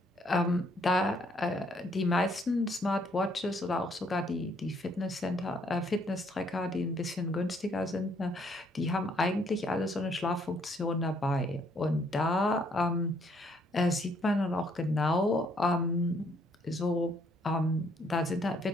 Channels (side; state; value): both; normal; correlation 0.67